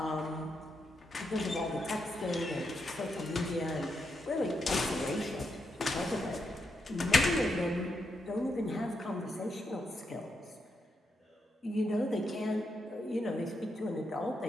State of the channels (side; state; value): both; normal; correlation 0.82